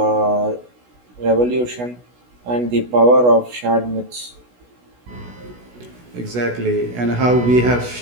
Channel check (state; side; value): late; left; 16 ms